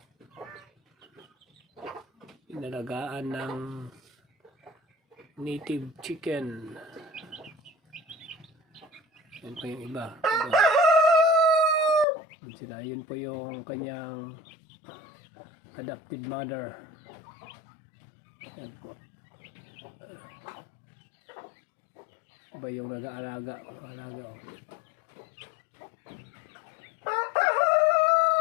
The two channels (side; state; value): right; drops out; at 12.1 s